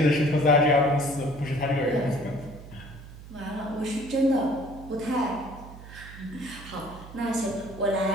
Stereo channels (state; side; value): noise; right; hum, 16 dB below the sound